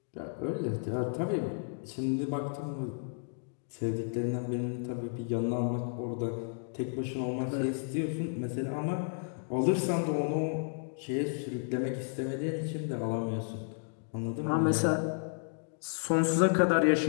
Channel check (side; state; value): right; silent; digital silence